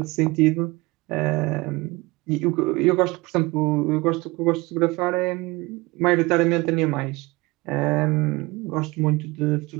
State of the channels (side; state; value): left; quieter; 22.7 dB